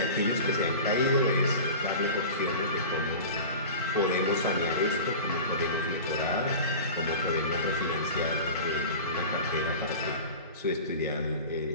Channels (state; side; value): inverted; both; correlation -0.34